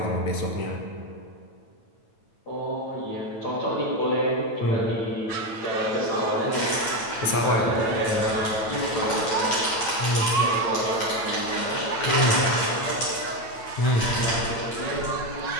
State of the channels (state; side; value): late; right; 9.0 ms